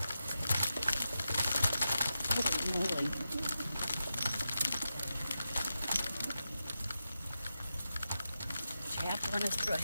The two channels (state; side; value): inverted; both; correlation -0.90